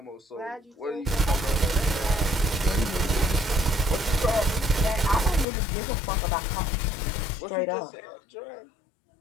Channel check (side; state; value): right; drops out; at 5.5 s